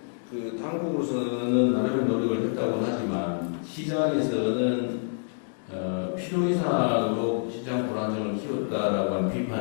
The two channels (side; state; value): right; silent; digital silence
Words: 그 당국으로서는 나름의 노력을 했다고는 하지만 시장에서는 필요 이상으로 시장 불안정을 키웠다라고 하는